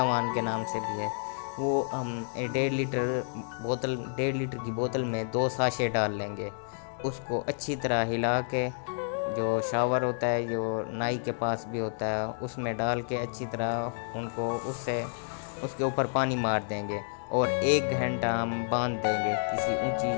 के नाम से भी है। वो हम 1.5 लीटर की बोतल में 2 साशे डाल लेंगे। उसको अच्छी तरह हिला के, जो शावर होता है जो नाई के पास भी होता है, उसमें डाल के अच्छी तरह उनको उसके ऊपर पानी मार देंगे और 1 घंटा हम बांध देंगे किसी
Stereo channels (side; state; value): right; silent; digital silence